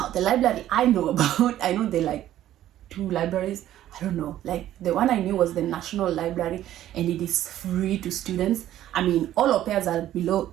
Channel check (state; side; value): quieter; left; 12.7 dB